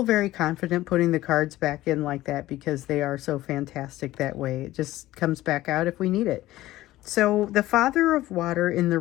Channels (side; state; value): right; quieter; 16.0 dB